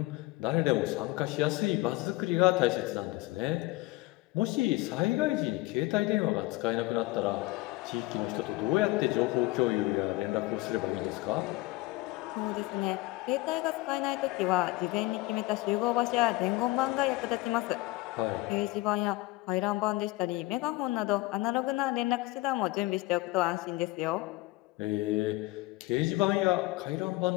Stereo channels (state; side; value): quieter; right; 20.7 dB